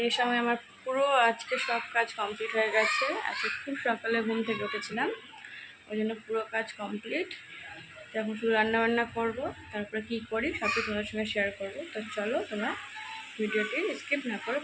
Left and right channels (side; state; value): both; identical; correlation 1.00